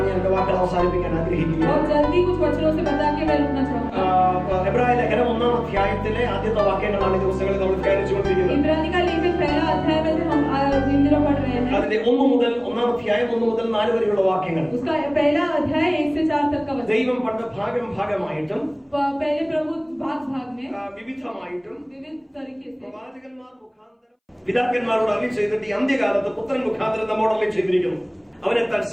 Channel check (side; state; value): both; identical; correlation 1.00